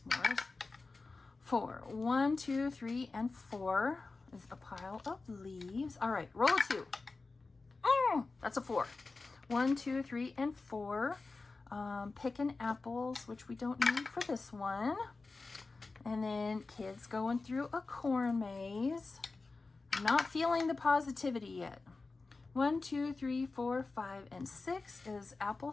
4. 1, 2, 3, and 4 is a pile of leaves. All right, roll a 2. That's a 4. 1, 2, 3, and 4. picking apples, which we don't need for this one. And then kids going through a corn maze. I'm not feeling the positivity yet. 1, 2, 3, 4, 5, and 6 is apple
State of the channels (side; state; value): right; quieter; 3.8 dB